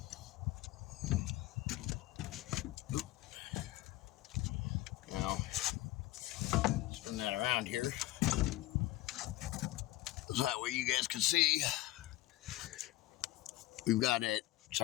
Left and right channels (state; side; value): quieter; right; 16.8 dB